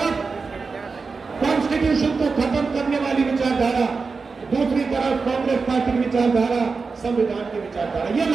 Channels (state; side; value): quieter; left; 4.6 dB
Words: कॉन्स्टिट्यूशन को खत्म करने वाली विचारधारा, दूसरी तरफ कांग्रेस पार्टी की विचारधारा, संविधान की विचारधारा, ये